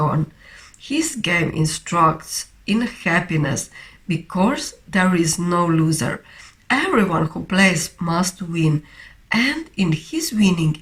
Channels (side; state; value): both; identical; correlation 1.00